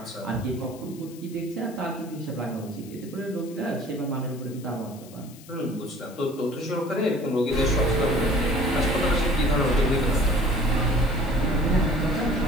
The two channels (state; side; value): noise; left; hiss, 21 dB below the sound